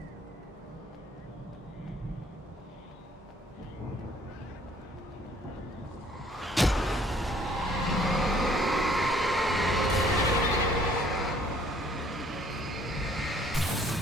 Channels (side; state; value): both; normal; correlation 0.60